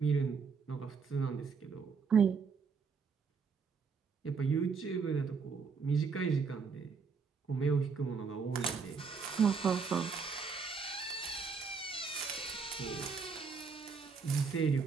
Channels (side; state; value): left; quieter; 5.4 dB